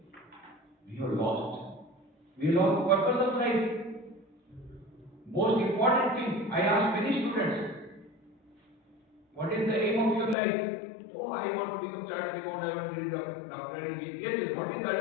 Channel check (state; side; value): drops out; right; at 10.4 s